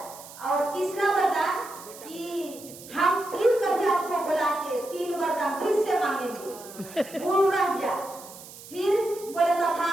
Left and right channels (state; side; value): noise; right; hiss, 17 dB below the sound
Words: और तीसरा वरदान कि हम फिर कभी आपको बुला के 3 वरदान फिर से मांगेंगे, गुण रह गया। फिर बोले